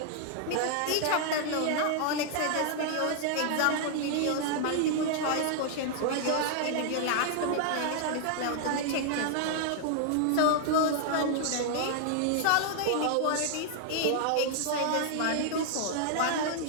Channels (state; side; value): different; both; correlation 0.00